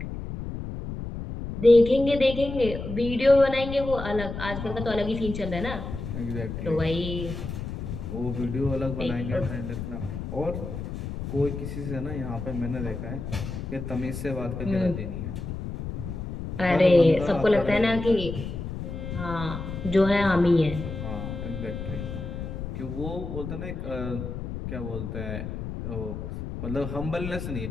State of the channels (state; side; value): noise; left; rumble, 6 dB below the sound